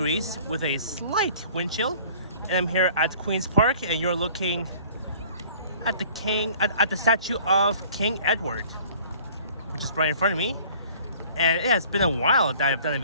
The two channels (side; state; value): both; inverted; correlation -0.51